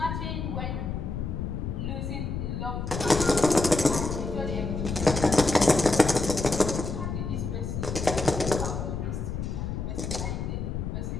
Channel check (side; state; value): left; noise; rumble, 4 dB below the sound